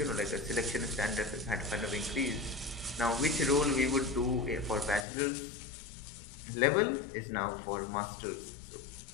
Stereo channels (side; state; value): right; drops out; at 5.1 s